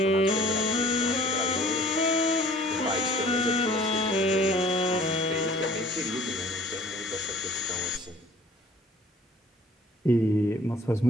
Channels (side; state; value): both; normal; correlation 0.53